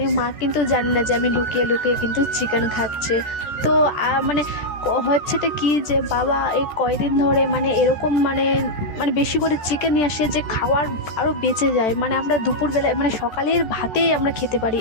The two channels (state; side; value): late; right; 14 ms